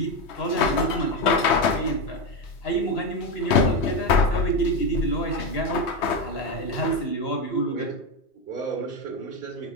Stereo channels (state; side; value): late; right; 3.2 ms